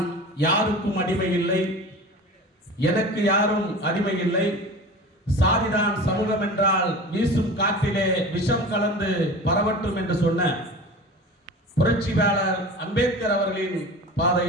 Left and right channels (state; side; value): normal; both; correlation 0.35